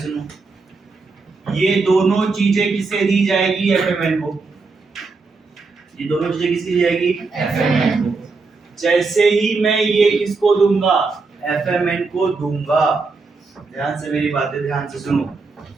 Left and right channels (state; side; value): quieter; left; 4.1 dB